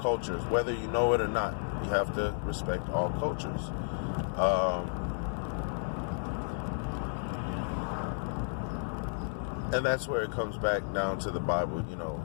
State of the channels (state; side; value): silent; right; digital silence